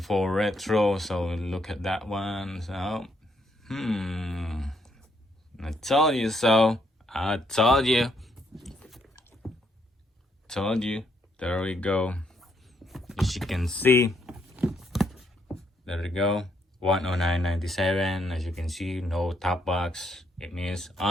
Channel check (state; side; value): normal; both; correlation 0.73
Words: Retro. So look at that one. So I told you so. I told you. There we go. As you can see, there we go. 109.97. As you can see, no top box. It means